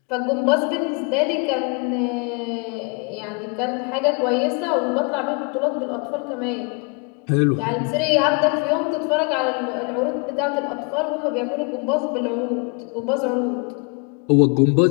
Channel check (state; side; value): quieter; right; 33.9 dB